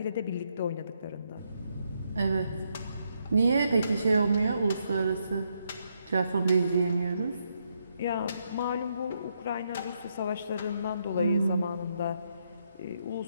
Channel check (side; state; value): both; inverted; correlation -0.77